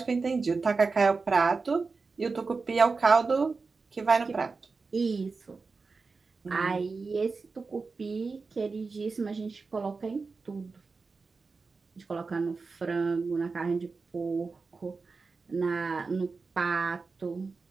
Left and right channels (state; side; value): quieter; left; 4.3 dB